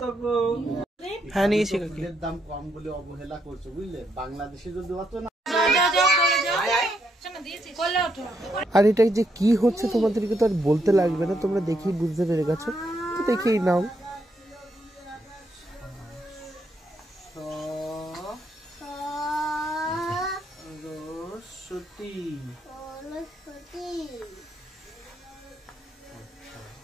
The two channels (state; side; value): normal; both; correlation 0.77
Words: হ্যাঁ নিয়েছি, দাম কম বলে অবহেলা করছো, বুঝলে? বাংলাদেশে যদি অত না। আর এটা যে কি হচ্ছে তোমাদেরকে তো আর বলতে লাগবে না, তোমরা দেখেই বুঝতে পেরে গেছো, তো দেখেই নাও।